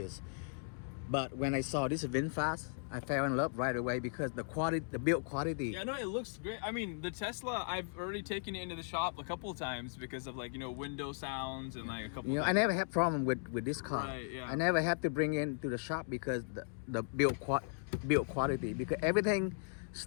But when I saw this VinFast, I fell in love right away because the quality, the build quality. Yeah, no, it looks great. I mean, the Tesla, I've already taken it into the shop a couple of times because of like, you know, window sounds and like a couple. You know, I never had problem with this car. Right, yeah. I never had to bring it to the shop because the build quality, because everything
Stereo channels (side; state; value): right; silent; digital silence